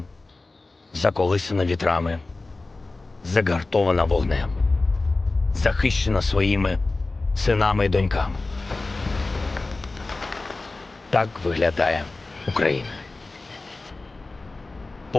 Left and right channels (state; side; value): quieter; right; 3.3 dB